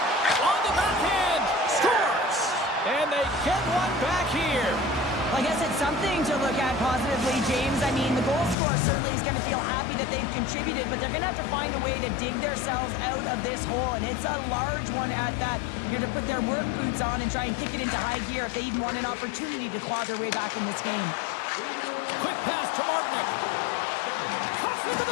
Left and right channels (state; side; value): drops out; right; at 8.6 s